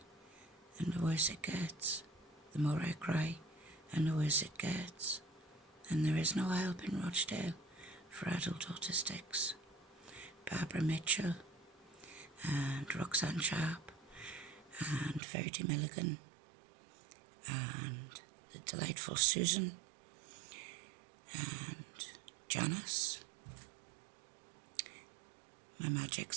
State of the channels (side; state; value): left; drops out; at 15.2 s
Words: and the worse it gets, the more I cry and the worse it gets. And there is no help in Rochdale for adult autistics. Barbara Mitchell and Roxanne Sharp and Verity Milligan and the delightful Susan and Janice. My Magic